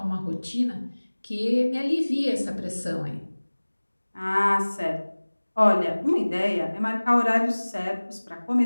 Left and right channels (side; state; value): both; inverted; correlation -1.00